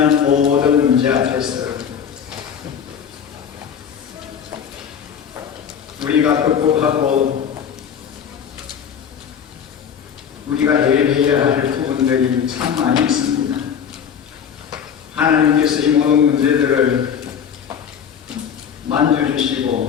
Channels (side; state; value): right; quieter; 7.8 dB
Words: 모든 문제 앞에서 우리가 극복하고 우리가 해결해야 할 부분들이 참 많이 있습니다. 하나님께서 이 모든 문제들을